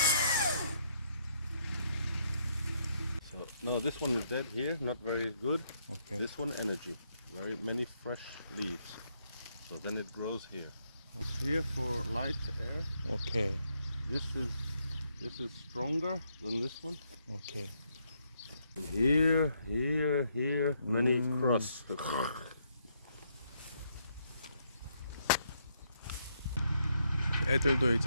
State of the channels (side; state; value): both; inverted; correlation -0.74